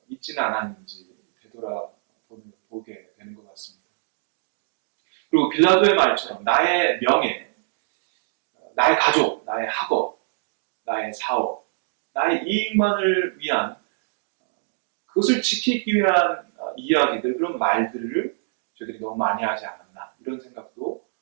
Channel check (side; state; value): left; silent; digital silence